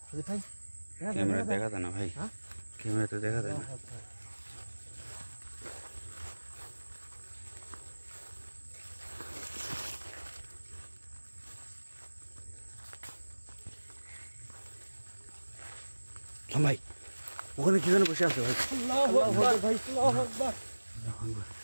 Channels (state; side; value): inverted; both; correlation -1.00